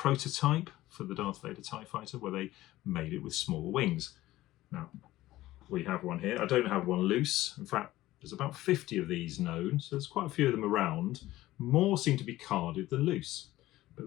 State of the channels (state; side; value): quieter; right; 16.2 dB